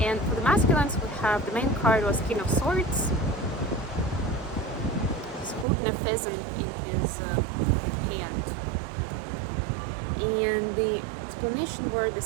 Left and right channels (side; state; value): left; drops out; at 5.7 s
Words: for the masculines, we have, the main card was King of Swords. He's holding a pheasant in his hand. And the explanation were the